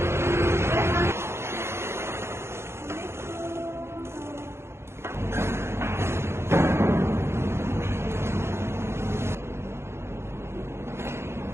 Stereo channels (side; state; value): left; late; 0.12 ms